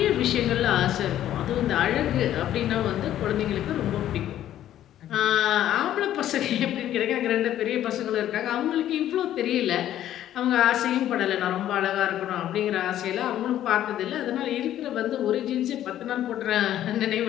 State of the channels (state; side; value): quieter; right; 12.0 dB